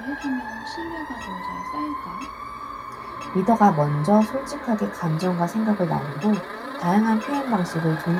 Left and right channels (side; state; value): both; identical; correlation 1.00